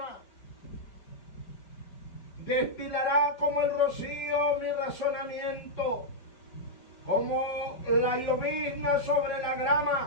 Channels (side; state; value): right; late; 4.6 ms